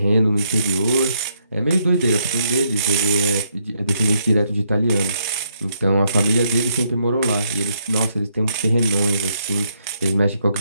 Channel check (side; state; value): both; inverted; correlation -0.75